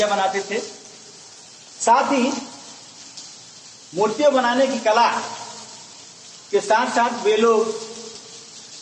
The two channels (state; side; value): identical; both; correlation 1.00